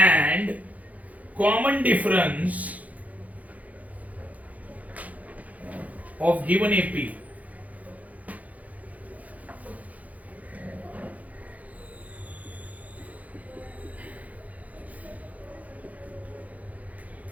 common difference of given AP।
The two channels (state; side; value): late; left; 0.073 ms